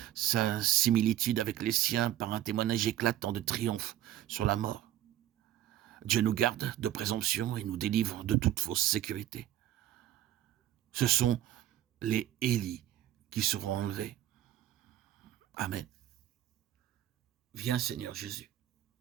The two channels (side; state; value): left; quieter; 12.6 dB